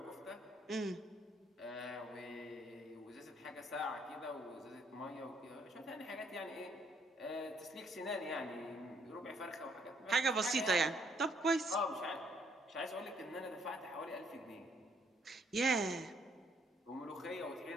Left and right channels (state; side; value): normal; both; correlation 0.68